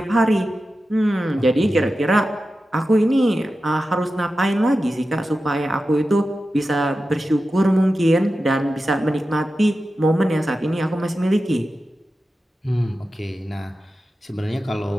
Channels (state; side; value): normal; both; correlation 0.92